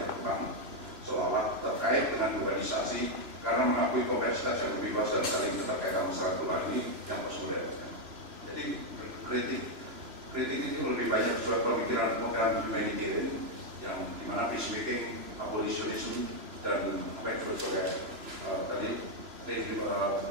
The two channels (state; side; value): late; left; 2.9 ms